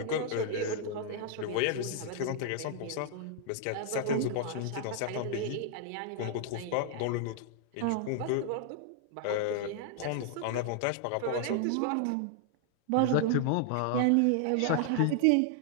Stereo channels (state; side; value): different; both; correlation 0.00